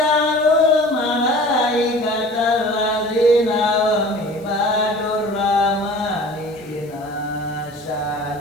malaikatal ladzina hum ibadur rahmani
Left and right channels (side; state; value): left; noise; hiss, 28 dB below the sound